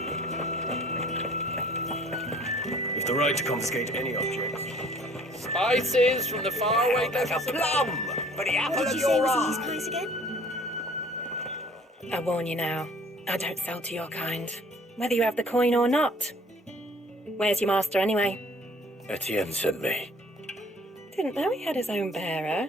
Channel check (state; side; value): normal; both; correlation 0.54